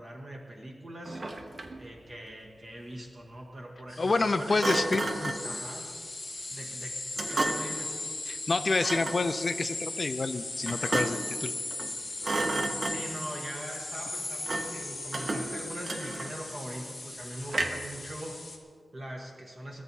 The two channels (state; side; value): normal; both; correlation 0.94